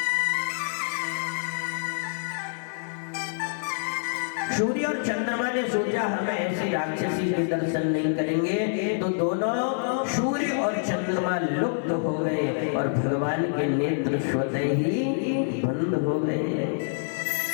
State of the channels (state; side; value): silent; right; 61 dB below the other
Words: सूर्य और चंद्रमा ने सोचा हम ऐसे राक्षसी के दर्शन नहीं करेंगे, तो दोनों सूर्य और चंद्रमा लुप्त हो गए और भगवान के नेत्र स्वतः ही बंद हो गए।